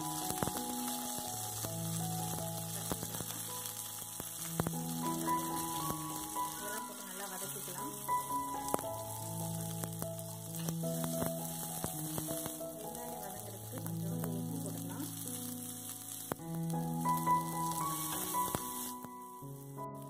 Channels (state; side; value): identical; both; correlation 1.00